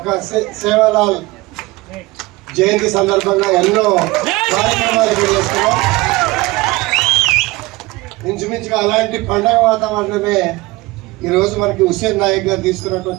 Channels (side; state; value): left; quieter; 21.0 dB